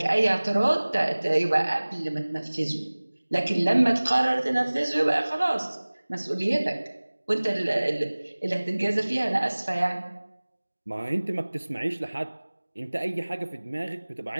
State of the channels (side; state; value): both; inverted; correlation -1.00